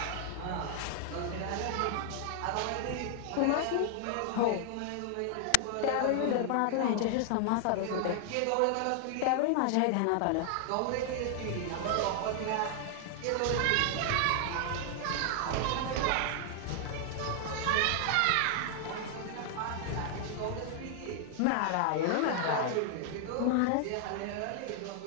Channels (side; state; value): both; different; correlation 0.00